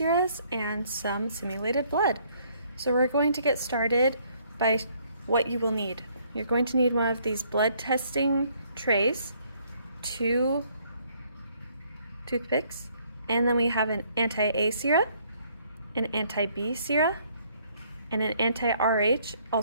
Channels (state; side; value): inverted; both; correlation -0.66